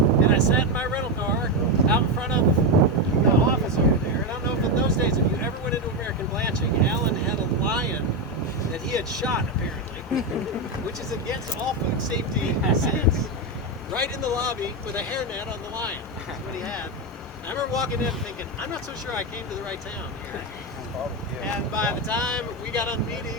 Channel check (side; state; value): both; normal; correlation 0.09